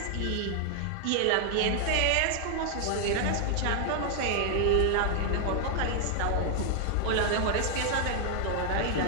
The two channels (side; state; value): both; different; correlation 0.00